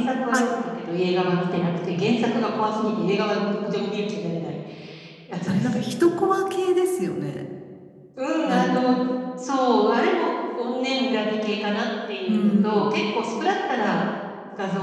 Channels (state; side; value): identical; both; correlation 1.00